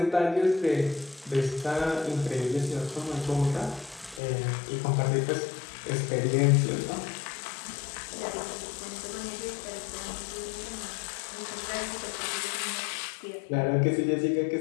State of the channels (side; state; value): right; drops out; at 4.2 s